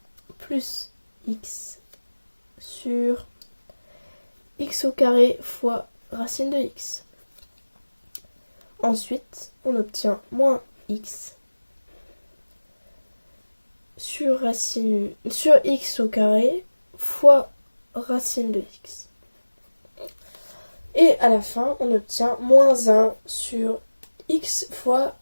plus x sur x au carré fois racine de x. Ensuite, on obtient moins x sur x au carré fois racine de x. Et à la fin, on obtient moins 1 sur x fois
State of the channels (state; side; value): inverted; both; correlation -1.00